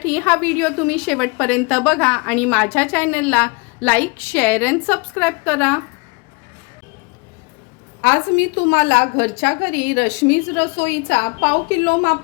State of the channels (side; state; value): right; quieter; 29.5 dB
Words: हा व्हिडिओ तुम्ही शेवटपर्यंत बघा आणि माझ्या चॅनलला लाईक शेअर अँड सबस्क्राईब करा। आज मी तुम्हाला घरच्या घरी रश्मीज रसोईचा पाव किलो